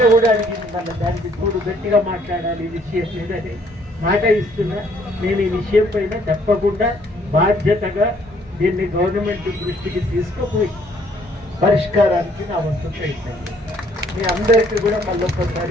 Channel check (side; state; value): both; normal; correlation 0.64